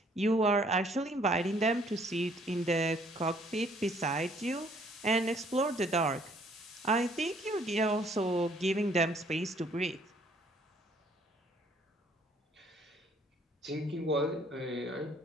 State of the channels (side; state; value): both; normal; correlation 0.62